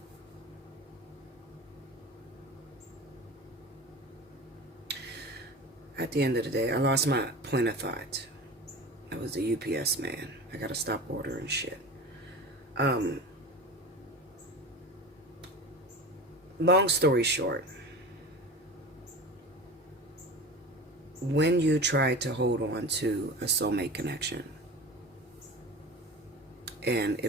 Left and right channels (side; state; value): both; normal; correlation 0.32